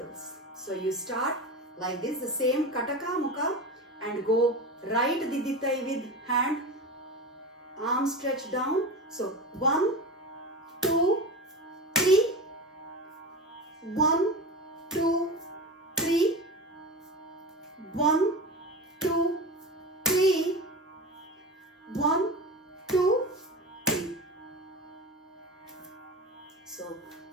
So you start like this, the same kataka mukha, and go right didithai with hand, arm stretched down. So 1, 2, 3. 1, 2, 3. 1, 2, 3. 1, 2, 3. So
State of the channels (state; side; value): normal; both; correlation 0.26